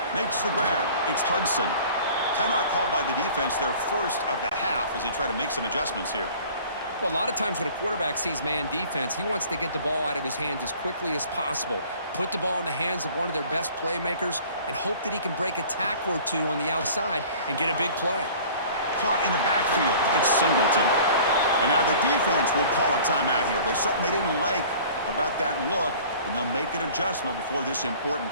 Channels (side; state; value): both; inverted; correlation -0.47